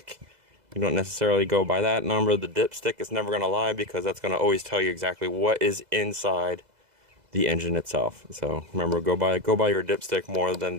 You don't necessarily go by that number. The dipstick is never going to lie, because that's going to always tell you exactly what is inside the engine itself. So remember, go by your dipstick more than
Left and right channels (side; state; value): left; late; 2.0 ms